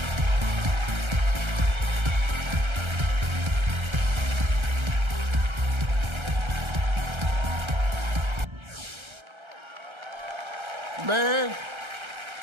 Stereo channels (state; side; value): late; left; 1.3 ms